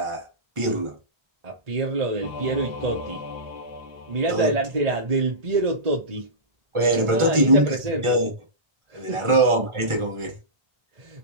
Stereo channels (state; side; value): late; left; 1.4 ms